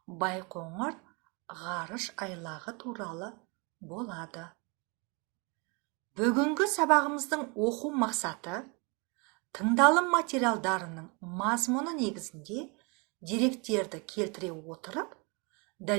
Байқоңыр ғарыш айлағы туралы болады. Бүгінгі сабағымыздың оқу мақсаты тыңдалым материалдарының мазмұны негізінде деректерді келтіре отырып,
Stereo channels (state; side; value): quieter; left; 31.2 dB